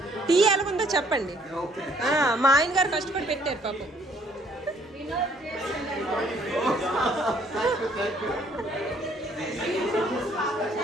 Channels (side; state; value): both; normal; correlation 0.62